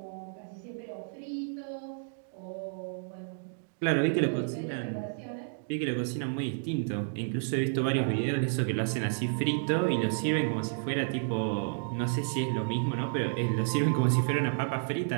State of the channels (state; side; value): silent; left; digital silence